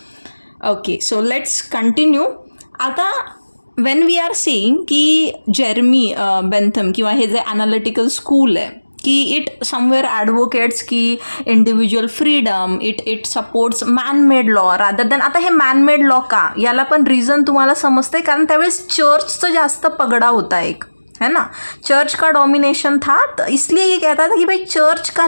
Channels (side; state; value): both; inverted; correlation -1.00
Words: Okay, so let's continue. आता वेन वी आर सेईंग की जेरमी बेंथम किंवा हे जे ॲनालिटिकल स्कूल आहे की इट समवेअर ॲडव्होकेट्स की individual freedom, it supports man-made law rather than. आता हे मॅनमेड लॉ का, याला पण रिझन तुम्हाला समजते, कारण त्यावेळेस चर्चचं जास्त पगडा होता एक, है ना. चर्च का डोमिनेशन था, तो इसलिए ये कहता था कि भाई चर्च का